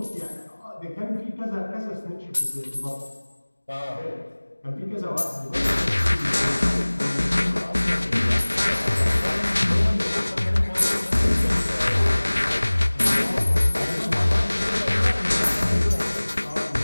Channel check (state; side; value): inverted; both; correlation -1.00